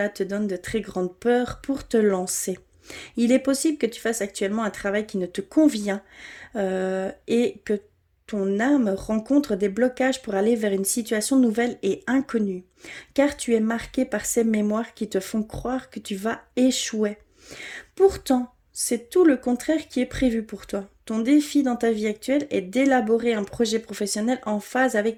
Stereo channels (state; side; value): identical; both; correlation 1.00